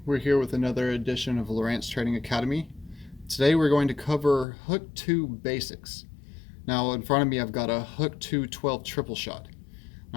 We're here with another edition of Lowrance Trading Academy. Today we're going to cover Hook 2 basics. Now in front of me I've got a Hook 2 12 triple shot.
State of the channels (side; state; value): right; drops out; at 4.5 s